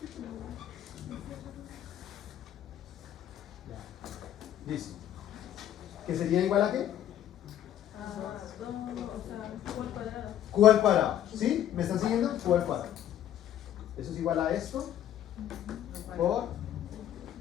Ya. Listo. ¿Que sería igual a qué? Q al cuadrado. ¿Sí? ¿Me están siguiendo? Q al cuadrado. Eso es igual a esto por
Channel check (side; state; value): right; quieter; 11.2 dB